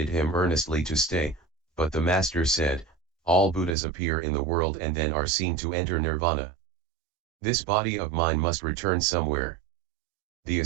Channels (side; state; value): left; drops out; at 3.8 s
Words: him earnestly to stay, but the Master said, all Buddhas appear in the world and then are seen to enter nirvana. This body of mine must return somewhere. The